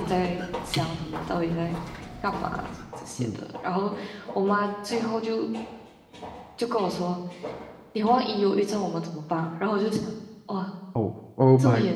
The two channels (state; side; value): identical; both; correlation 1.00